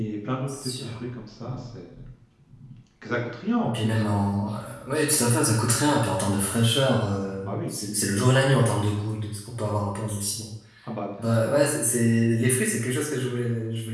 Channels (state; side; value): identical; both; correlation 1.00